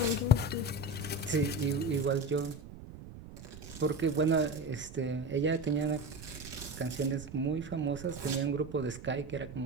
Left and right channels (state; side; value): noise; right; rumble, 14 dB below the sound